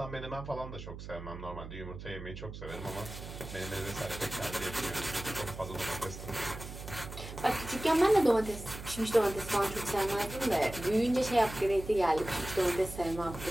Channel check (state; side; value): noise; right; hum, 11 dB below the sound